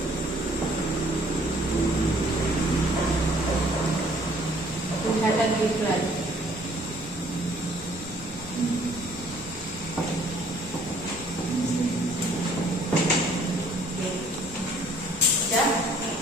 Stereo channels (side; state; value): both; normal; correlation 0.59